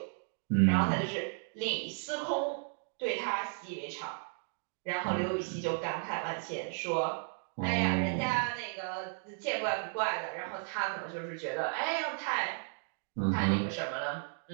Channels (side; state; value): left; silent; 55 dB below the other